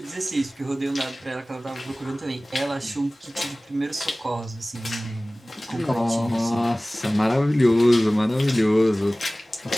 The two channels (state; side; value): normal; both; correlation 0.98